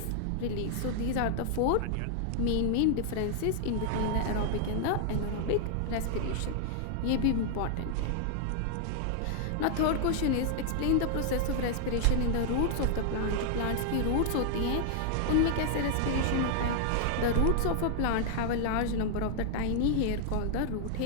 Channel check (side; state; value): both; different; correlation 0.00